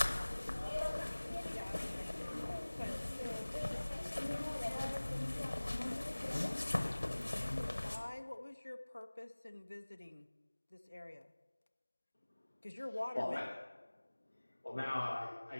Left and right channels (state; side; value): inverted; both; correlation -1.00